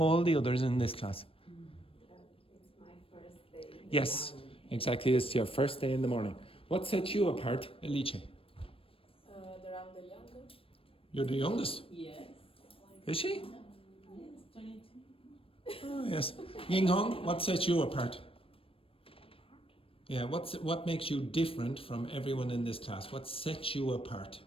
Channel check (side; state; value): right; late; 0.27 ms